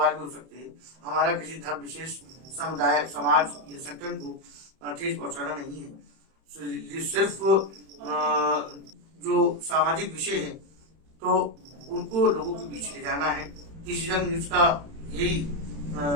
भी हो सकते हैं। हमारा किसी धर्म विशेष, समुदाय, समाज या संगठन को ठेस पहुंचाना नहीं है। ये सिर्फ जो सामाजिक विषय है तो उनको लोगों के बीच ले जाना है। किसी रंग न्यूज का यही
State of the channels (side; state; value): left; late; 31 ms